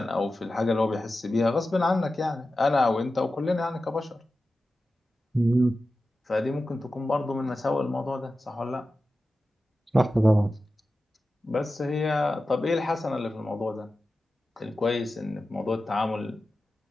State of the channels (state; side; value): normal; both; correlation 0.93